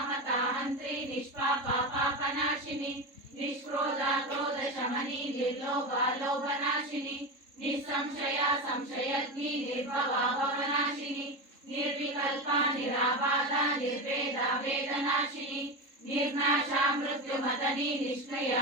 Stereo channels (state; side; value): late; left; 3.7 ms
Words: నిష్పాప పాపనాశిని నిష్క్రోధ క్రోధ శమని నిర్లోభ లోభనాశిని నిస్సంశయ సంశయగ్ని నిర్భవ భవనాశిని నిర్వికల్ప నిరాబాధ నిర్వేద వేదనాశిని నిర్నాశ మృత్యుమతని నిష్క్రియ